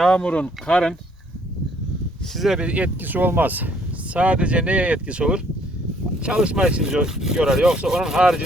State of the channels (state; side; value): normal; both; correlation 0.63